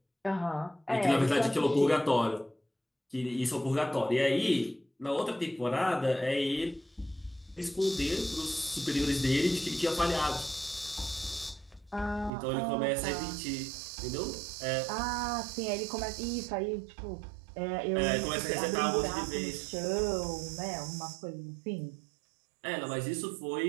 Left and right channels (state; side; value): drops out; left; at 12.3 s